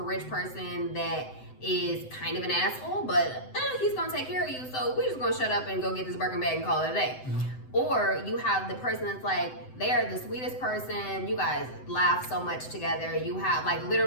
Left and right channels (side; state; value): right; late; 7.8 ms